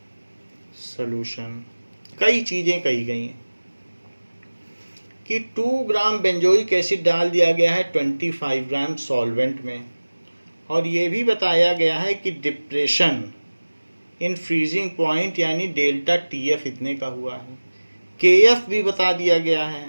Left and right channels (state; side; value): inverted; both; correlation -1.00